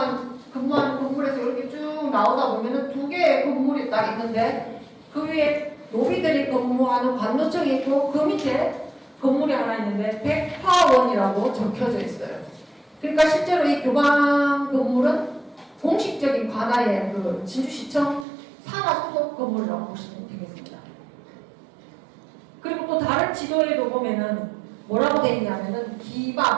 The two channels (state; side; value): drops out; left; at 18.2 s